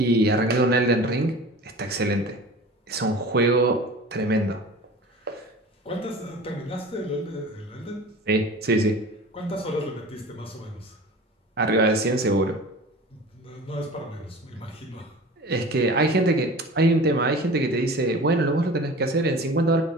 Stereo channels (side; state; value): both; normal; correlation 0.38